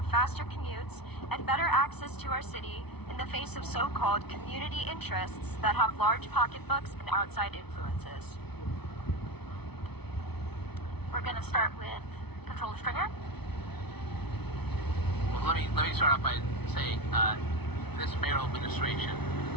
faster commutes and better access to our city in the face of so-called community interests that have large pocketbooks and outside influences? We're going to start with Controller Stringer. Well, let me start off by saying this mayoral administration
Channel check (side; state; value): right; late; 0.99 ms